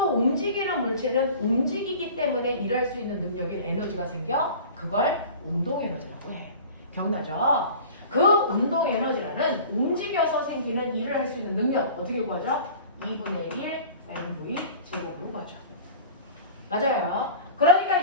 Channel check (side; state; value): both; inverted; correlation -0.40